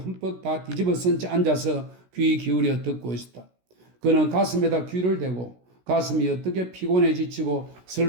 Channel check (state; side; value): late; left; 16 ms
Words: 다 뒤집어 쓴 채 앉아서 귀 기울여 듣고 있었다. 그는 가슴에다 귀를 대고 가슴이 어떻게 피곤해 지치고